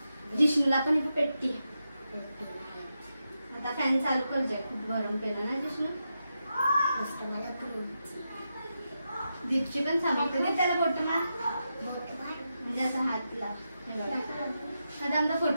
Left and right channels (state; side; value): inverted; both; correlation -0.87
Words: जिष्णूला पण इथे पेट्टी. आता फॅन चालू कर जाय, खूप गरम केला ना जिष्णू. दीपची पण सामग्री दे त्याला फोटोला, म्हणजे असं हातला. आता आमचा